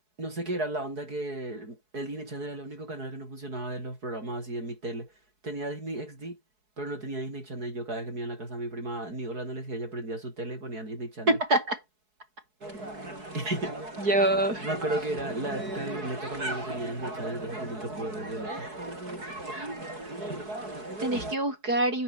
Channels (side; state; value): left; late; 4.7 ms